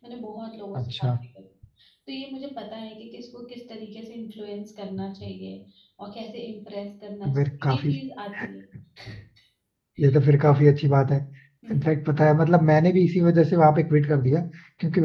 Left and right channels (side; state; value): both; identical; correlation 1.00